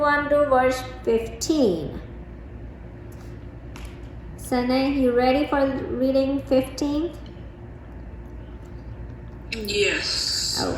on to verse 15. Sanay, you ready for reading 15? Yes.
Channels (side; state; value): both; identical; correlation 1.00